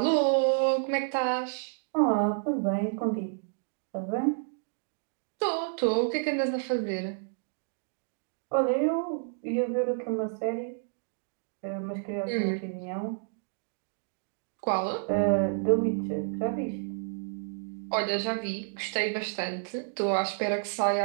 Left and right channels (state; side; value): silent; left; digital silence